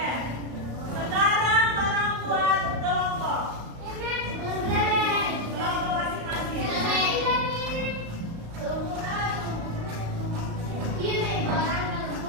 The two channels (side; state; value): left; late; 35 ms